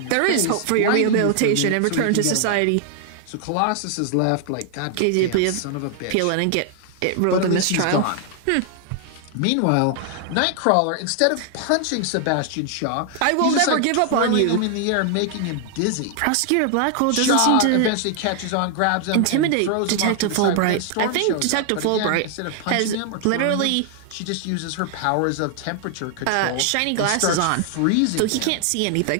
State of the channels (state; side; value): different; both; correlation 0.00